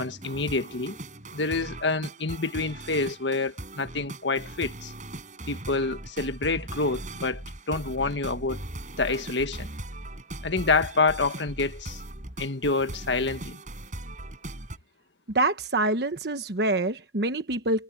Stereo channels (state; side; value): normal; both; correlation -0.06